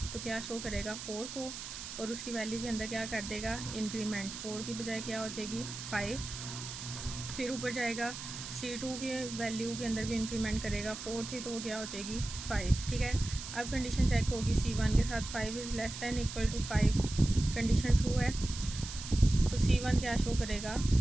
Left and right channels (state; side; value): noise; right; hiss, 9 dB below the sound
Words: तो क्या शो करेगा, 4 को, और उसकी वैल्यू के अंदर क्या कर देगा, इंक्रीमेंट, 4 की बजाय क्या हो जाएगी, 5। फिर ऊपर जाएगा, सी टू के वैल्यू के अंदर भी इंक्रीमेंट करेगा, 4 थी तो वो क्या हो जाएगी, 5, ठीक है। अब कंडीशन चेक होगी, सी वन के साथ 5 is less than equal to 5, condition true है, तो सी वन क्या शो करेगा,